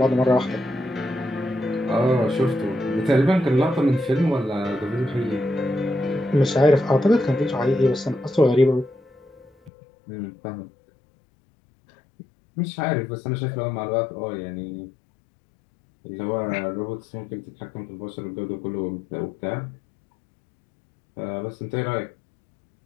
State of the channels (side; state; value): right; drops out; at 9.7 s